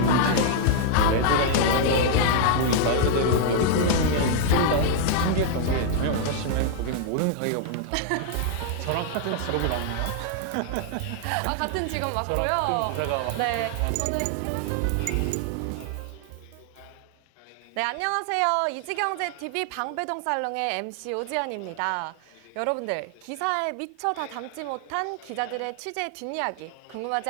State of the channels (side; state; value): both; different; correlation 0.00